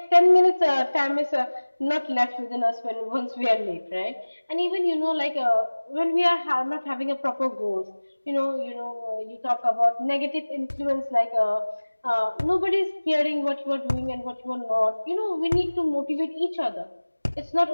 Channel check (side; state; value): both; inverted; correlation -1.00